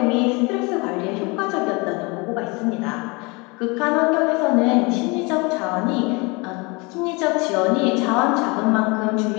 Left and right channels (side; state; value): right; quieter; 27.8 dB